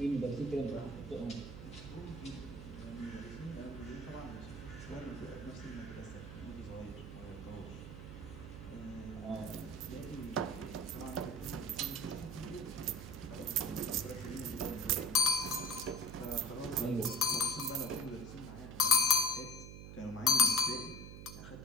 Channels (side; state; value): right; noise; hum, 11 dB below the sound